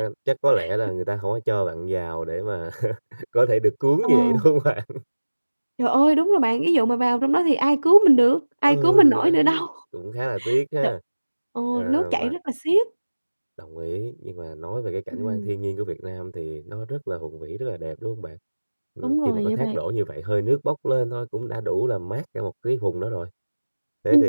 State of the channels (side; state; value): both; inverted; correlation -1.00